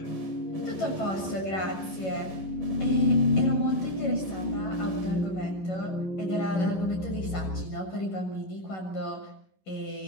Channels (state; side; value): late; right; 11 ms